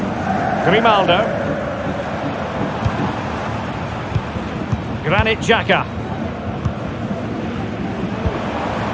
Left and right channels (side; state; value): both; identical; correlation 1.00